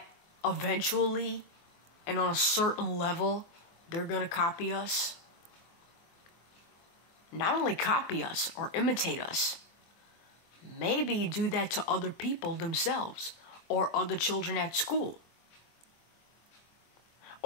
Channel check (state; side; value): late; right; 25 ms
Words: eventually and on a certain level, they're going to copy us. Not only copy us or imitate us, maybe do that to other people themselves or other children at school.